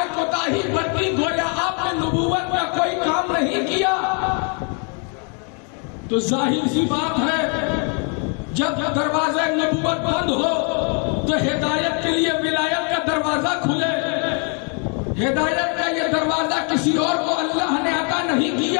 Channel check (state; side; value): quieter; right; 39.7 dB